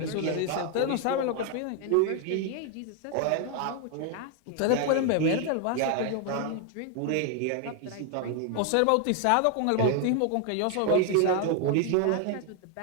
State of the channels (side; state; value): both; different; correlation 0.00